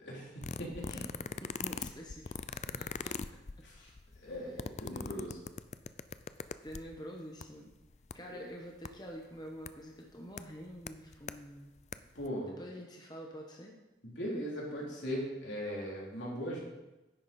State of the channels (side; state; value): both; normal; correlation 0.48